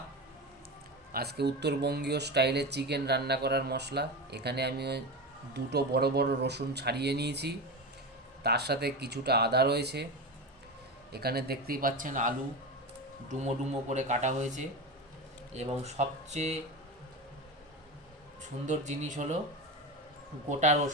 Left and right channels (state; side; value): normal; both; correlation 0.22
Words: আজকে উত্তরবঙ্গীয় স্টাইলে চিকেন রান্না করার মশলা। এখানে আমি দুটো বড় বড় রসুন ছাড়িয়ে নিয়েছি, তার সাথে কিছুটা আদা রয়েছে। এখানে দেখতেই পাচ্ছেন আলু ডুমো ডুমো করে কাটা হয়েছে, এবং সবচেয়ে সুন্দর জিনিস হলো গোটা